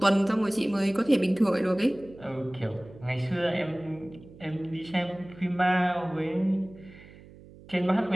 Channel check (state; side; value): noise; right; hum, 21 dB below the sound